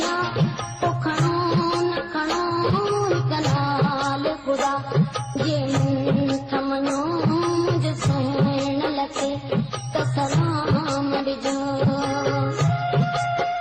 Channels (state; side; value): identical; both; correlation 1.00